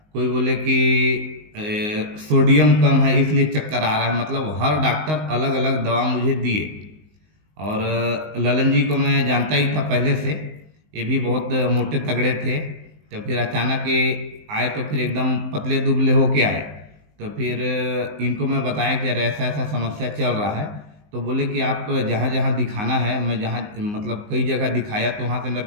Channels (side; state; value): left; late; 19 ms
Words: कोई बोले कि सोडियम कम है इसलिए चक्कर आ रहा है। मतलब हर डॉक्टर अलग अलग दवा मुझे दिए। और ललन जी को मैं जानता ही था पहले से, ये भी बहुत मोटे तगड़े थे। तो फिर अचानक ये आए तो फिर एकदम पतले दुबले होके आए। तो फिर इनको मैं बताया कि यार ऐसा ऐसा समस्या चल रहा है। तो बोले कि आप जहाँ जहाँ दिखाना है, मैं जहाँ मतलब कई जगह दिखाया तो वहाँ से मेरे